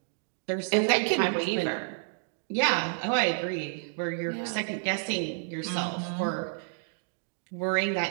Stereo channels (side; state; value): left; silent; digital silence